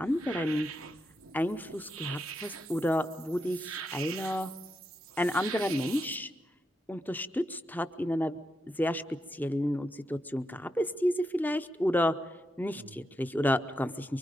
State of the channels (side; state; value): both; normal; correlation 0.85